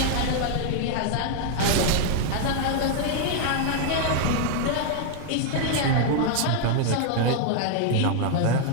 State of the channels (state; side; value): different; both; correlation 0.00